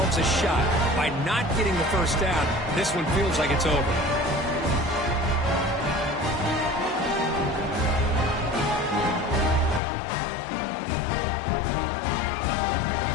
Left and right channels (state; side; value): drops out; right; at 9.8 s